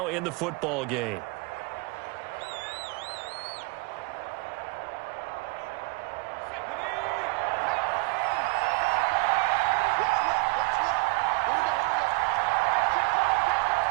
in the football game.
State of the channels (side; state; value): left; quieter; 26.5 dB